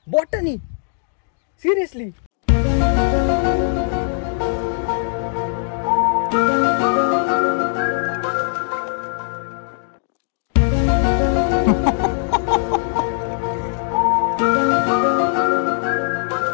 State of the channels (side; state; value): right; silent; digital silence